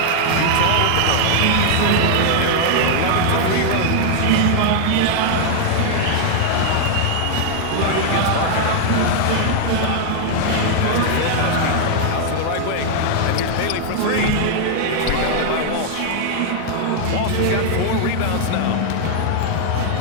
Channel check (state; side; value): different; both; correlation 0.00